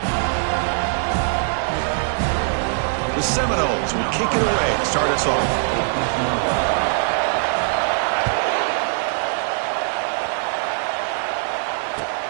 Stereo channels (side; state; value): left; silent; 65 dB below the other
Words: The Seminoles will kick it away to start us off.